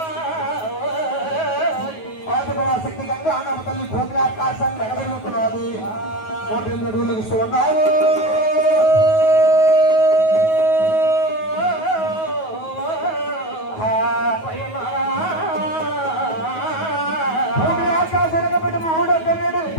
శక్తి గంగా నవతల్లి భూమి ఆకాశాన్ని ఎగబెరుగుతున్నది. 108 అడుగులు ఇస్తూ ఉన్నారు. భూమి ఆకాశం ఎగబెట్టి 308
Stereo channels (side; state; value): right; late; 9.3 ms